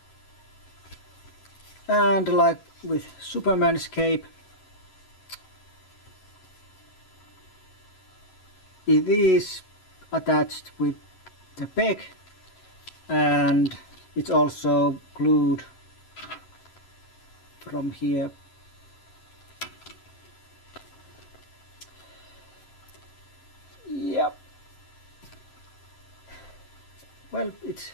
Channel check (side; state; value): right; late; 11 ms